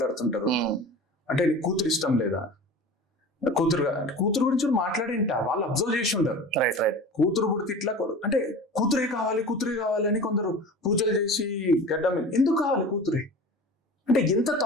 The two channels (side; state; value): both; normal; correlation 0.36